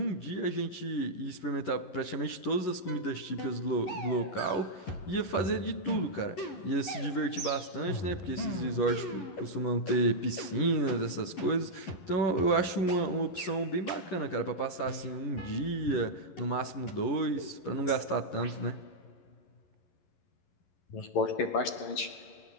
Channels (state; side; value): late; right; 11 ms